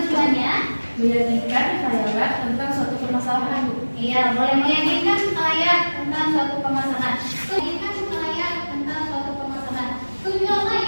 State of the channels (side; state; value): both; inverted; correlation -1.00